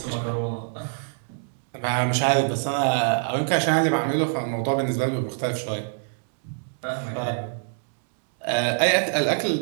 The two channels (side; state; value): left; silent; digital silence